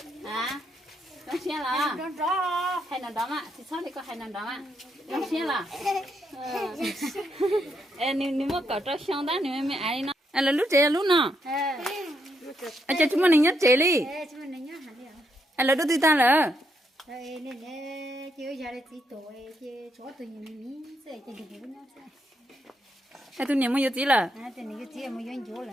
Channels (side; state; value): both; normal; correlation 0.78